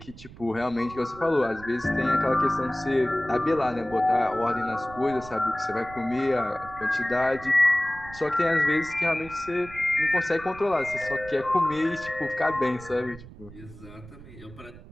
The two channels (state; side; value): noise; right; rumble, 18 dB below the sound